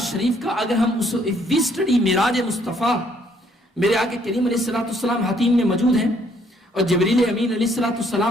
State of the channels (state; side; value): normal; both; correlation 0.66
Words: شریف کا اگر ہم وی اسٹڈی معراج مصطفیٰ، میرے آقا کریم علیہ الصلوۃ والسلام حتیم میں موجود ہیں اور جبریل امین علیہ الصلوۃ